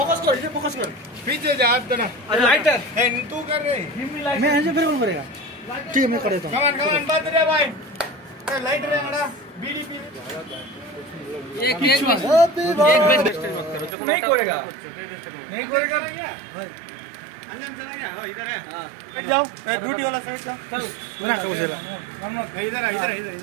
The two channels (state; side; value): drops out; left; at 14.0 s